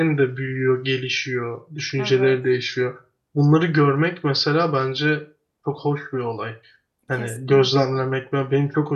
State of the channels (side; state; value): both; identical; correlation 1.00